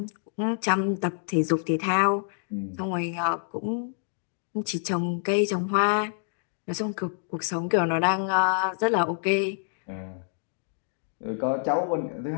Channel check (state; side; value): silent; right; digital silence